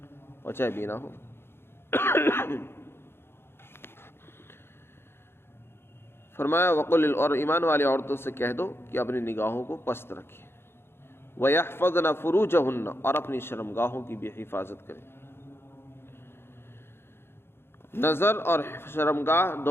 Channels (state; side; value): late; right; 0.11 ms